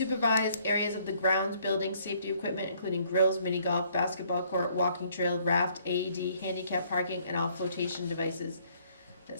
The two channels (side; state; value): both; inverted; correlation -0.64